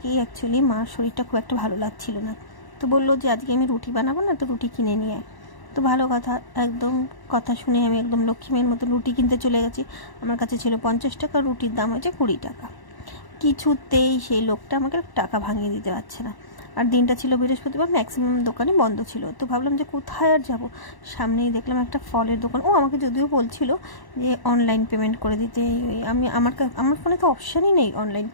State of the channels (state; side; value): late; right; 1.0 ms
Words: অ্যাকচুয়ালি মার শরীরটা খুব একটা ভালো লাগছিল না। তো বললো যে আজকে আমি রুটি বানাবো না, তো রুটি কিনে নিয়ে আয়। তো ভালো কথা, একদম কথা শুনে আমি একদম লক্ষ্মীমের মতো রুটি কিনতে চলে গেছি। আমার কাছে ছিল 50 টাকা, রুটির দাম হয়েছে 20 টাকা। কিছুতেই সেই লোকটা আমাকে টাকা ভাঙিয়ে দিতে পারছে না। আর দিনটা ছিল বৃহস্পতিবার, ম্যাক্সিমাম দোকানই বন্ধ ছিল। তো ভাবলাম যে কোথায় আর যাব, সামনেই দেখলাম একটা ফলের দোকান। ও আমাকে যদিও বলছিল যে অনলাইন পেমেন্ট করে দিতে। আমি আমার ফোনে তো অপশানই নেই অনলাইন